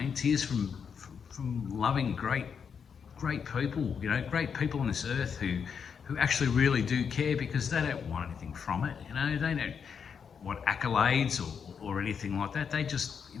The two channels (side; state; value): right; quieter; 6.7 dB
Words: mean? Tears from loving great people, you know, great people on this earth who actually really do care because they don't want anything from it, you know, they don't want accolades or anything like that. They just, you